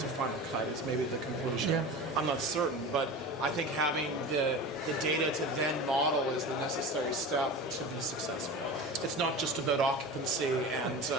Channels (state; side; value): normal; both; correlation 0.31